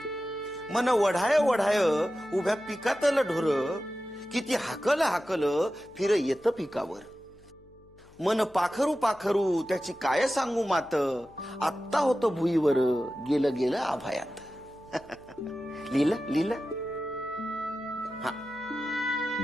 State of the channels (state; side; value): noise; left; hum, 27 dB below the sound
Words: मन वढाय वढाय उभ्या पिकातलं ढोर, किती हाकल हाकल फिर येतं पिकावर. मन पाखरू पाखरू त्याची काय सांगू मात, आत्ता होतं भुईवर गेलं गेलं आभायात. लिहिलं लिहिलं. हा.